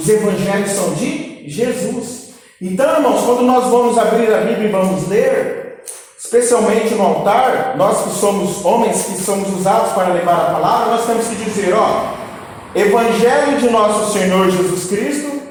Evangelhos são de Jesus. Então, irmãos, quando nós vamos abrir a Bíblia e vamos ler, especialmente no altar, nós que somos homens que somos usados para levar a palavra, nós temos que dizer, Evangelho de nosso Senhor Jesus Cristo,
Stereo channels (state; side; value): identical; both; correlation 1.00